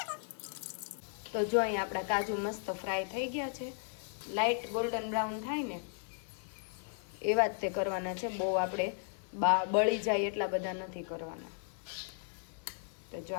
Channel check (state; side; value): silent; right; 54 dB below the other